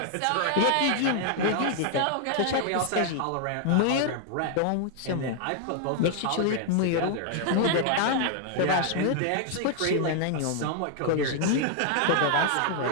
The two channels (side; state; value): both; different; correlation 0.00